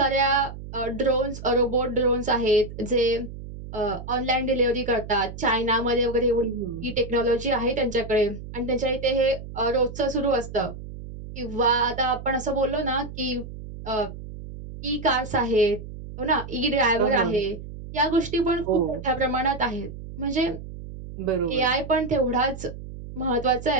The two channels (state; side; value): noise; right; hum, 12 dB below the sound